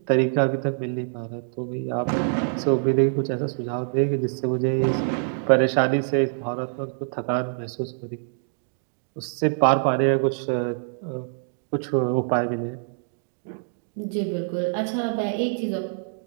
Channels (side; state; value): left; silent; digital silence